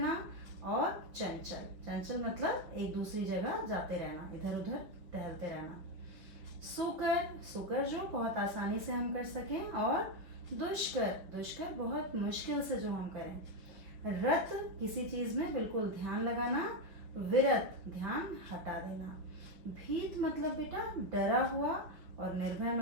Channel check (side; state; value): left; late; 5.6 ms